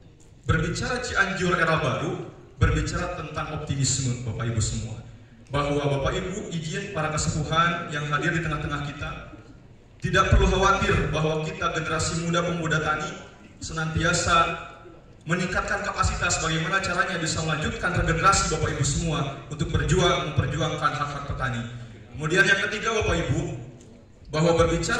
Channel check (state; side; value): identical; both; correlation 1.00